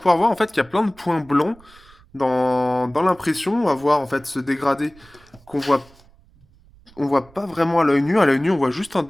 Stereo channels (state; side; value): noise; right; rumble, 27 dB below the sound